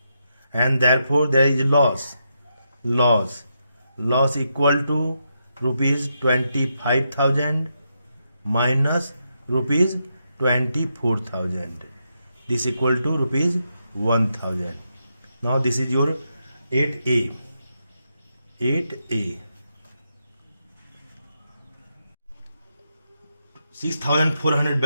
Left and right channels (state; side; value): inverted; both; correlation -0.83